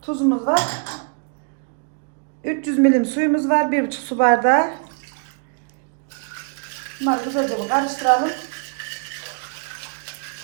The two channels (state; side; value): quieter; left; 39.6 dB